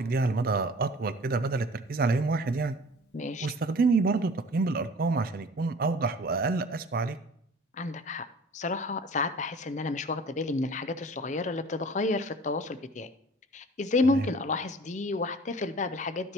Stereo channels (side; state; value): both; normal; correlation 0.45